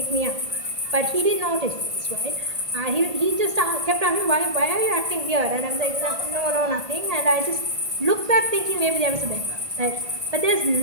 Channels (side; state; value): left; late; 1.5 ms